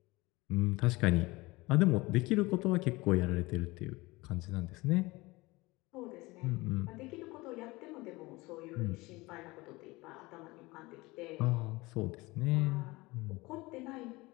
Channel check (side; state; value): right; quieter; 22.0 dB